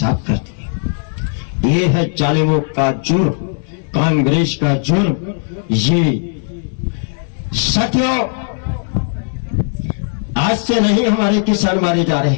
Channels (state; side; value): silent; right; 68 dB below the other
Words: कर दिया। ये है जालिमों का जुर्म, कांग्रेस का जुर्म। ये साथियों, आज से नहीं हमारे किसान मारे जा रहे